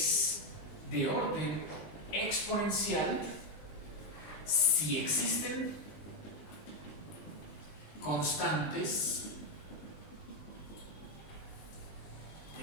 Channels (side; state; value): right; late; 20 ms